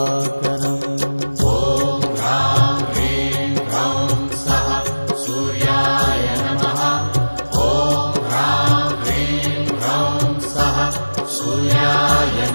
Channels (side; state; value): both; inverted; correlation -1.00